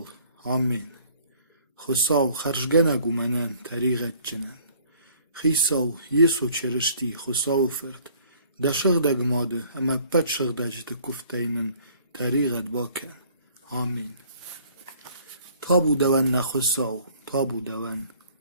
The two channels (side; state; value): both; inverted; correlation -0.56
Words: Amin. Khosav kharjgenagu menen tariqetçinen. Khisav yeso çerişti khosav fırt. Da şıgdeg madı ama pet şıgdecti kufteynin tariqet baken. Amin. Tabu deven ne khosav. Tabu deven.